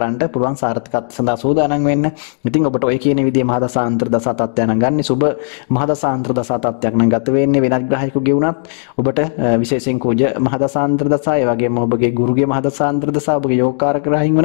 පුළුවන් සාර්ථකත් සඳහා සූදානම් වෙන්න. ඉතින් ඔබට ඔය කියන විදිහේ මහදසාන්තර දසා තත්ත්වයන් නම් ගන්න සුබ මහදසාන්තර දසා තත්ත්වයක් නම් ගත වෙන්නේ වෙනත් ග්‍රහයකගේ වුණත් ඔබට විශේෂයෙන් කුජ මහදසාන්තර දසා ඒ වගේම ඔබගේ ගුරුගේ මහදසාන්තර දසා ඔබගේ යෝගකාරක ග්‍රහයින්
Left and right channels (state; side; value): silent; right; digital silence